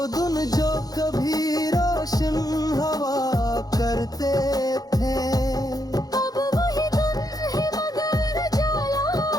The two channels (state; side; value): late; right; 0.18 ms